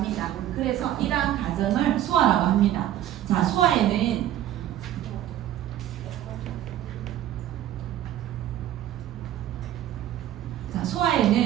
그래서 이러한 과정을 소화라고 합니다. 자, 소화에는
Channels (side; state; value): left; quieter; 12.3 dB